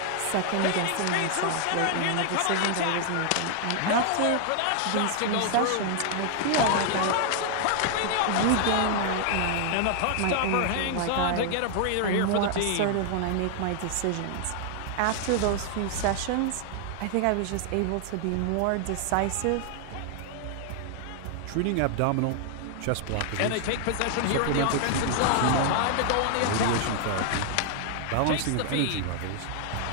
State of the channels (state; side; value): different; both; correlation 0.00